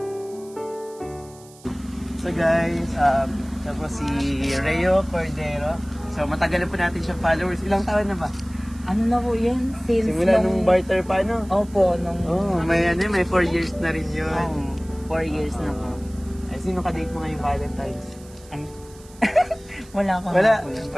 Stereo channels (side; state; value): right; noise; hiss, 24 dB below the sound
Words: So guys, tapos si Reo Cordero. So matagal na po natin siyang followers. Ilang taon na ba? Ano na po yan? Since Simula nung barter pa, no? Opo, nung... May 4 years na rin yun. 4 years na po. Ay, sino ka-date mo ngayong Valentine's? Ay. Wala pa. Wala. po yun.